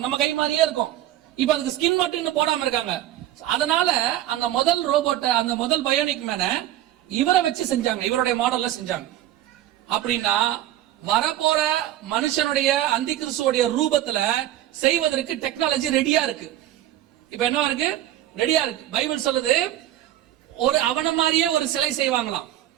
நம்ம கை மாதிரியே இருக்கும். இப்ப அதுக்கு ஸ்கின் மட்டும் இன்னும் போடாம இருக்காங்க. அதனால அந்த முதல் ரோபோட்டை, அந்த முதல் பயோனிக் மேனை இவரை வச்சு செஞ்சாங்க, இவருடைய மாடல்ல செஞ்சாங்க. அப்படின்னா வரப்போற மனுஷனுடைய அந்தி கிறிஸ்துவோடைய ரூபத்துல செய்வதற்கு டெக்னாலஜி ரெடியா இருக்கு. இப்ப என்ன இருக்கு? ரெடியா இருக்கு. பைபிள் சொல்லுது, ஒரு அவன மாதிரியே ஒரு சிலை செய்வாங்களாம்,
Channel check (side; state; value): left; quieter; 13.2 dB